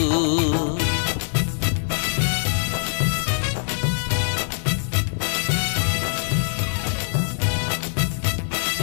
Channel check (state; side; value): silent; right; digital silence